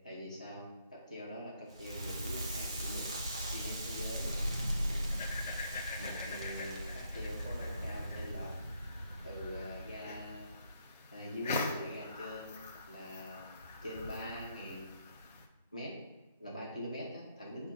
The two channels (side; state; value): both; inverted; correlation -0.73